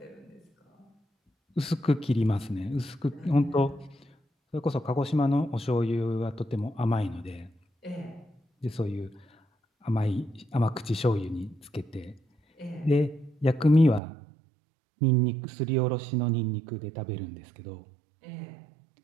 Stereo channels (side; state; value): left; drops out; at 14.0 s